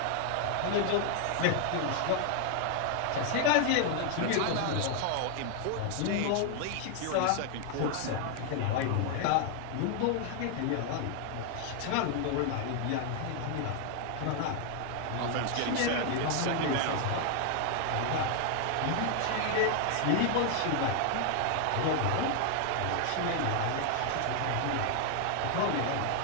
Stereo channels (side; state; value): both; different; correlation 0.00